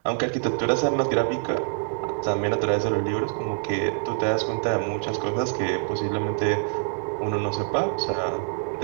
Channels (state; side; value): silent; left; digital silence